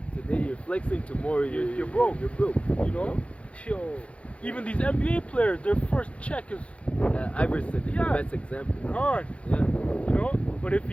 Today you're flexing, tomorrow you're broke. You're broke. Yo, even these NBA players, their first check is Iverson is the best example. Gone. Yeah. But if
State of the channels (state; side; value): late; right; 0.062 ms